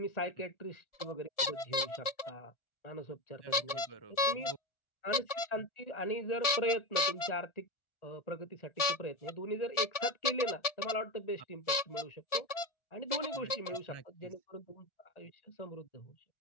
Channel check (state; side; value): late; right; 1.7 ms